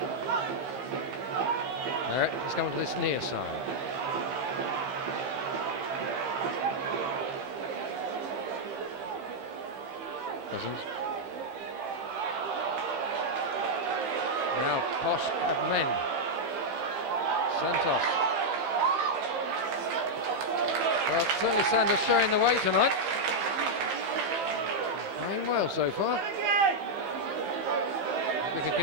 He's going to this near side. Cousins. Now Posh have men. Santos. Well, certainly Sanders showing the way tonight. Playing well so far. We can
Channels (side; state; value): left; late; 15 ms